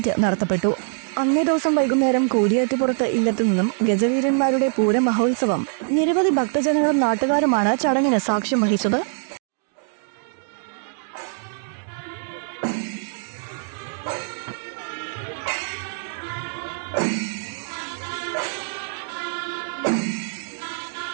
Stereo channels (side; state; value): left; silent; 62 dB below the other